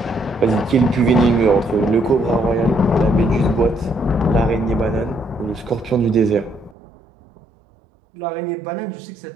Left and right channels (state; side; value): drops out; left; at 6.8 s